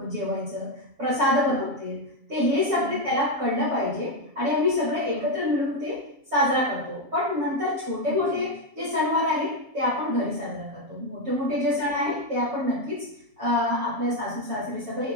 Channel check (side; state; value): left; late; 7.4 ms